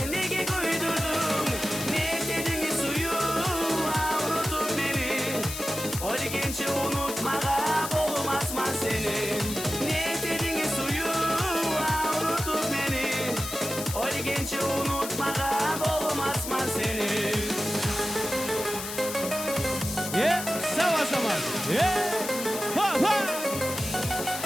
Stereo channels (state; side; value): noise; left; hiss, 7 dB below the sound